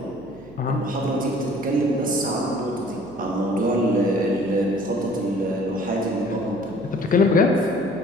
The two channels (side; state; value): right; noise; hum, 23 dB below the sound